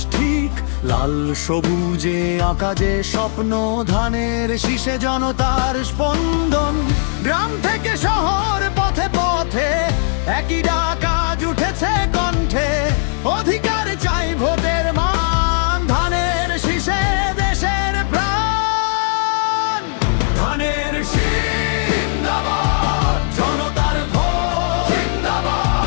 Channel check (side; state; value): right; silent; digital silence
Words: ঠিক। লাল সবুজে আঁকা যে স্বপ্ন, ধানের শীষে জনতার স্পন্দন। গ্রাম থেকে শহর, পথে পথে একই ডাক আজ উঠেছে কণ্ঠে। অধিকার চাই, ভোটের মান, ধানের শীষে দেশের প্রাণ। ধানের শীষ জিন্দাবাদ, জনতার ভোট